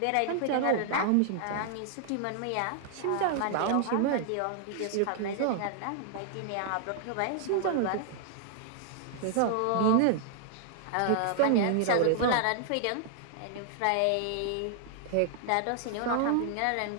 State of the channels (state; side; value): different; both; correlation -0.01